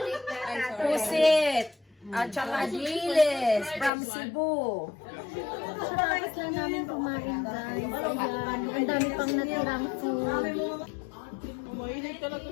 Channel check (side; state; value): right; drops out; at 3.9 s